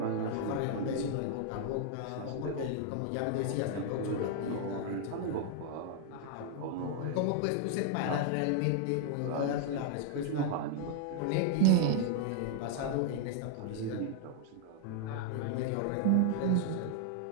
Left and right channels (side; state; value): both; different; correlation 0.00